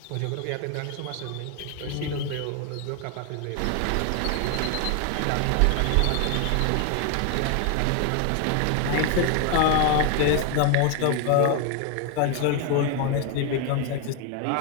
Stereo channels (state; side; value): different; both; correlation 0.01